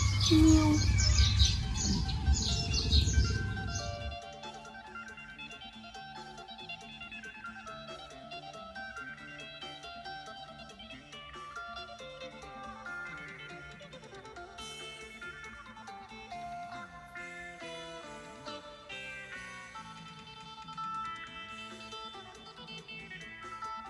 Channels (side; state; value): both; identical; correlation 1.00